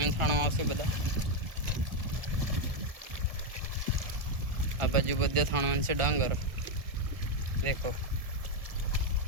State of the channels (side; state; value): left; late; 1.4 ms